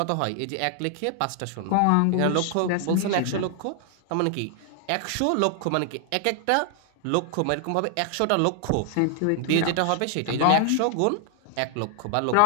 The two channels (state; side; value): different; both; correlation 0.00